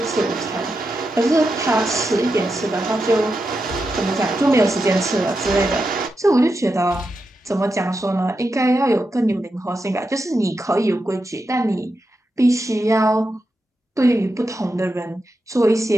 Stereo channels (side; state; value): both; normal; correlation 0.88